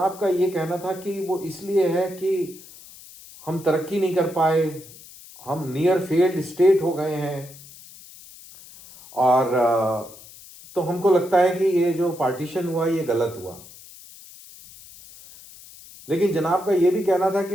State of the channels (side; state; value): left; noise; hiss, 19 dB below the sound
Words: का ये कहना था कि वो इसलिए है कि हम तरक्की नहीं कर पाए, हम नियर फेल्ड स्टेट हो गए हैं, और तो हमको लगता है कि ये जो पार्टीशन हुआ ये गलत हुआ। लेकिन जनाब का ये भी कहना था कि